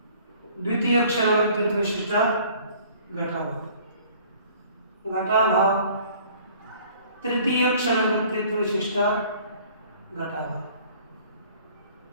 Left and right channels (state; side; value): inverted; both; correlation -0.53